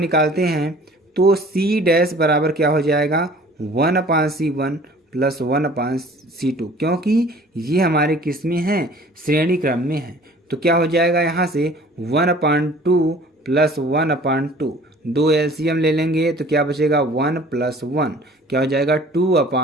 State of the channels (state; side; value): normal; both; correlation 0.50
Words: हैं तो C डैश बराबर क्या हो जाएगा 1/C1 प्लस 1/C2, क्योंकि ये हमारे किस में हैं श्रेणी क्रम में है। तो क्या हो जाएगा यहाँ से 1/2 प्लस 1/2, 2 एलसीएम ले लेंगे तो क्या बचेगा 1 + 1 क्या हो जाएगा